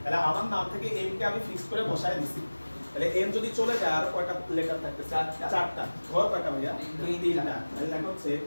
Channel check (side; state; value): both; inverted; correlation -1.00